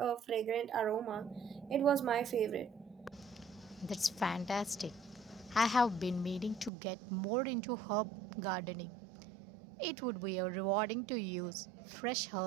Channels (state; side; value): drops out; left; at 6.7 s